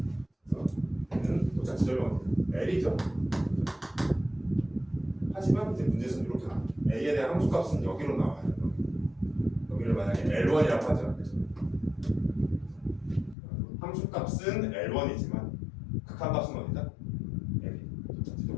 그래서 얘는 도착 지점이 어디야? L이죠. 하지만 이제 문제에서는 이렇게 나와요. A에 대한 함수값은 여기로 나와요. 여기를 만약에 L1이라고 하죠. 그죠? 함수값은 L1이지만 극한값은 어디다? L이. 도착 지점이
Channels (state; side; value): drops out; right; at 13.4 s